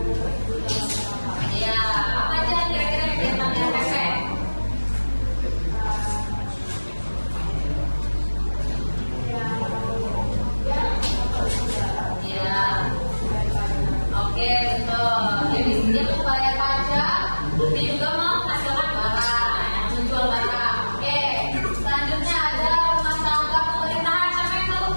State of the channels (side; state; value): both; inverted; correlation -1.00